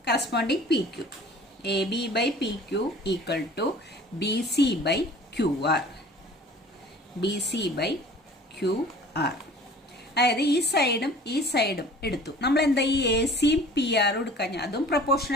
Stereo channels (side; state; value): both; normal; correlation 0.47